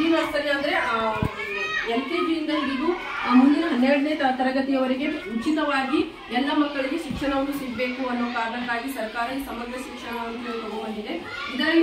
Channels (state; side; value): identical; both; correlation 1.00